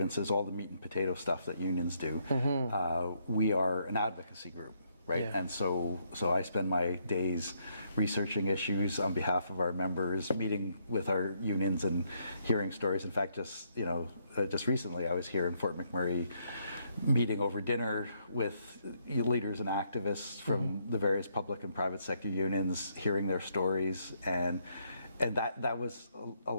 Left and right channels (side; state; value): both; inverted; correlation -0.73